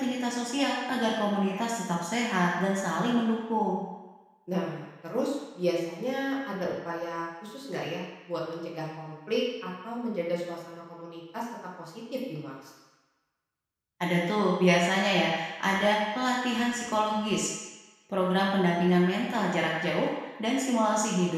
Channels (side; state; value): both; identical; correlation 1.00